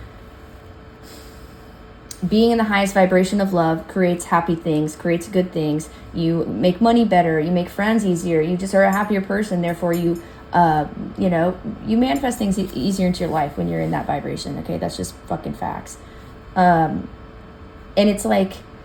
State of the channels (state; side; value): identical; both; correlation 1.00